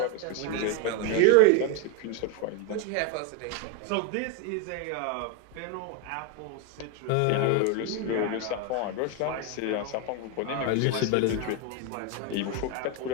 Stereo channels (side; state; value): both; different; correlation 0.01